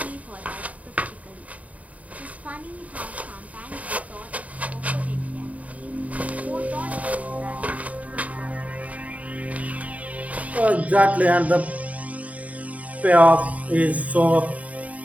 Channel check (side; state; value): left; late; 0.069 ms